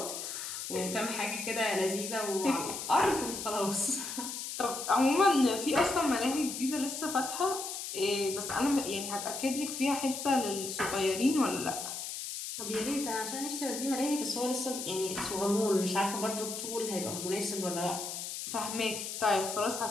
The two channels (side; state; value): left; noise; hiss, 6 dB below the sound